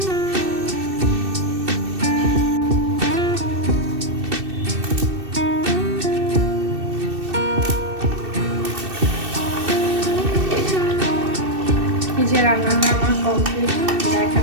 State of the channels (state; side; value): late; left; 2.7 ms